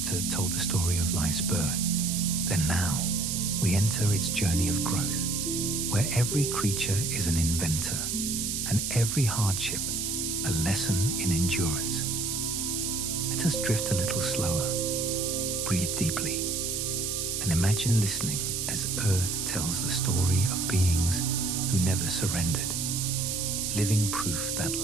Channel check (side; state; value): right; noise; hiss, 1 dB below the sound